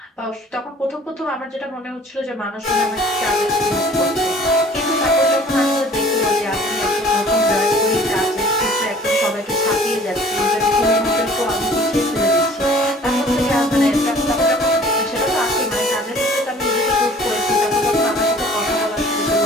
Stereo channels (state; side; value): normal; both; correlation 0.51